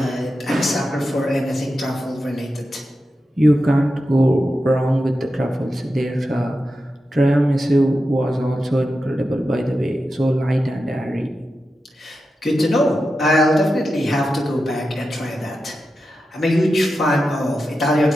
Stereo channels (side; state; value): both; normal; correlation 0.90